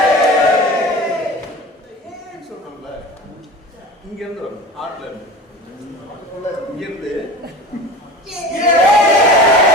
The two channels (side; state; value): both; normal; correlation 0.35